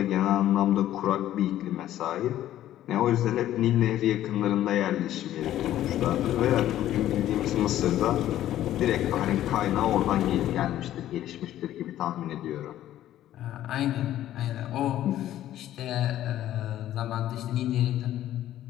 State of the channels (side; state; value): right; quieter; 12.8 dB